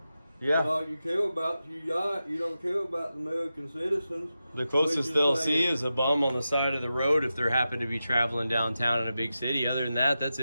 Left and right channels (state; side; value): inverted; both; correlation -0.91